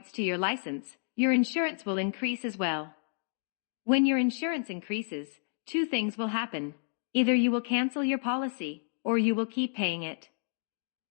to your license, your insurance will increase as well. When your insurance increases, 2 things will happen. Either you will cancel your policy, or you will keep paying it.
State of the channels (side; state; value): right; silent; digital silence